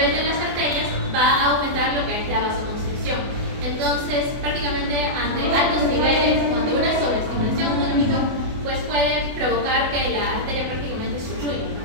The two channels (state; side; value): late; left; 24 ms